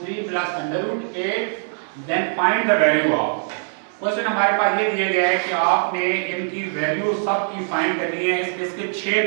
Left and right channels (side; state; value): left; silent; digital silence